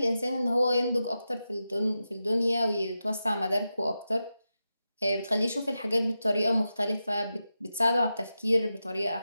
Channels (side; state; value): both; inverted; correlation -0.90